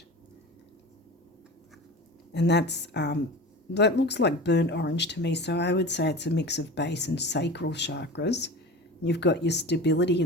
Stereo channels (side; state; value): both; normal; correlation 0.33